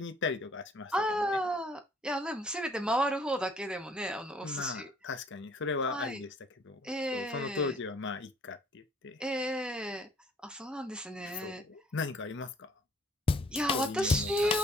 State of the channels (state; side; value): normal; both; correlation 0.58